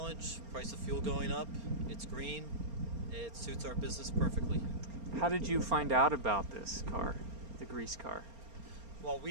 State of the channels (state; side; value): late; left; 4.3 ms